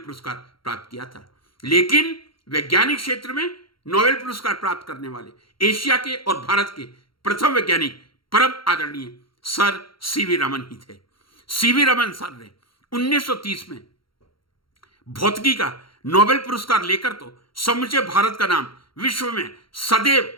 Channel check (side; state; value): right; late; 0.73 ms